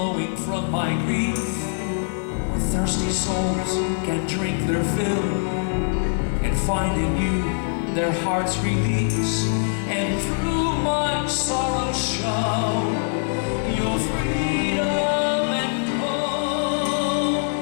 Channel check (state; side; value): silent; right; digital silence